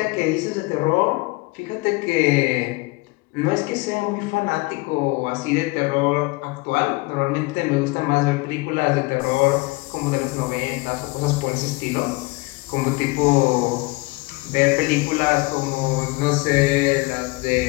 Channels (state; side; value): quieter; right; 24.1 dB